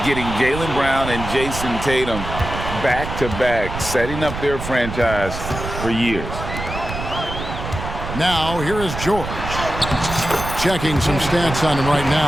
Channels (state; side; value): noise; right; rumble, 7 dB below the sound